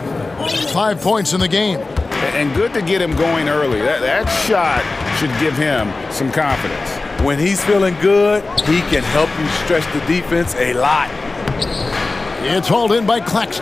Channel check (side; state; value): right; quieter; 3.4 dB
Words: 5 points in the game. And good to get him going early. That shot should give him some confidence. When he's feeling good, he can help you stretch the defense a lot. It's hauled in by